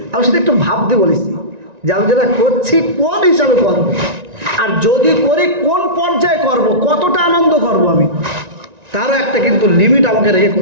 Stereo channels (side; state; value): left; late; 1.9 ms